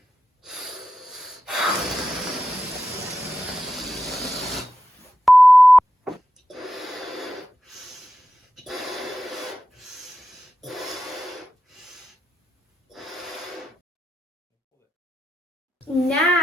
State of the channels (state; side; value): normal; both; correlation 0.90